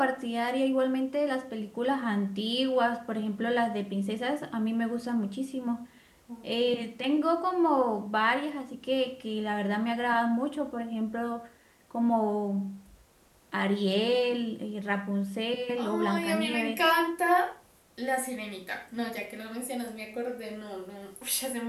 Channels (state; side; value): identical; both; correlation 1.00